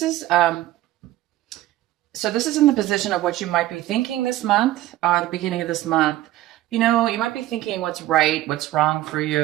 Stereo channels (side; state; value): left; quieter; 15.1 dB